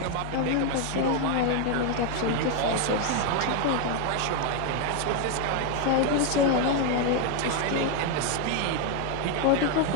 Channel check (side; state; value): both; different; correlation 0.01